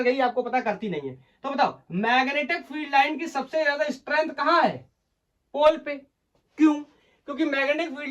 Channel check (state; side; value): identical; both; correlation 1.00